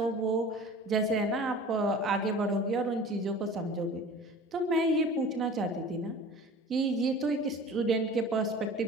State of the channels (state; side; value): normal; both; correlation 0.42